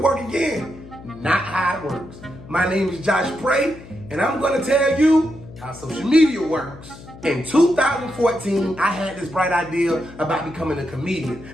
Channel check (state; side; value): noise; left; hum, 18 dB below the sound